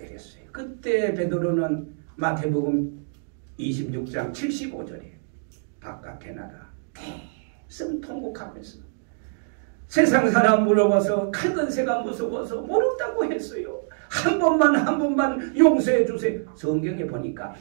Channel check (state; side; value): silent; left; digital silence